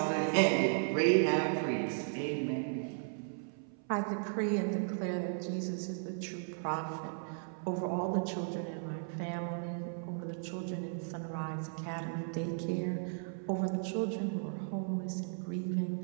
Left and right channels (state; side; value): silent; left; 54 dB below the other